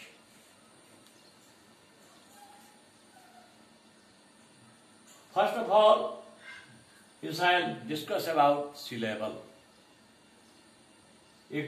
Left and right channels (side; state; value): both; identical; correlation 1.00